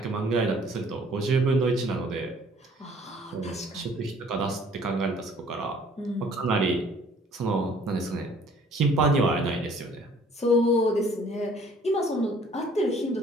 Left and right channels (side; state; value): both; normal; correlation 0.56